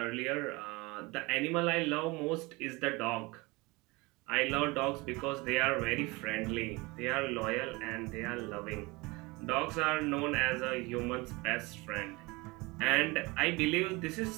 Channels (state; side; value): quieter; left; 24.3 dB